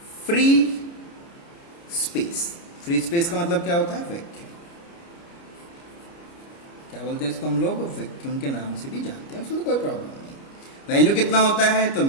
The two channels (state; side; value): late; right; 29 ms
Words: free space. Free space का मतलब क्या होता है? वैक्यूम। क्या बोलते हैं इसको हम लोग? वैक्यूम के नाम से भी जानते हैं, उसमें कोई प्रॉब्लम नहीं। वैल्यू कितना होता है? तो